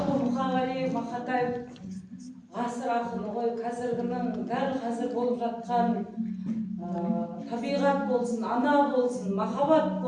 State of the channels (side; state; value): both; identical; correlation 1.00